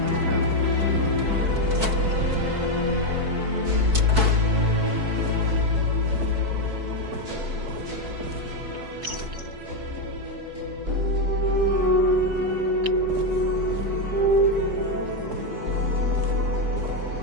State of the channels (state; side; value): late; left; 4.6 ms